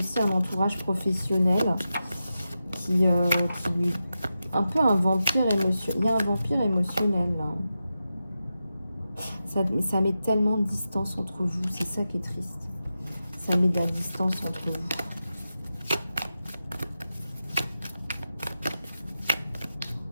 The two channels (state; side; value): inverted; both; correlation -0.91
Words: un entourage professionnel qui lui... Un peu un vampire émotionnel. Il y a un vampire émotionnel, là. Ça met tellement de distance entre vous. C'est ça qui est triste. Ça met de la distance entre vous.